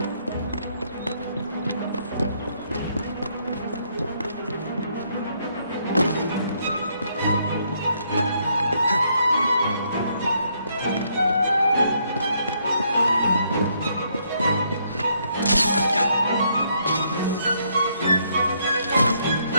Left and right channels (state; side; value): inverted; both; correlation -0.72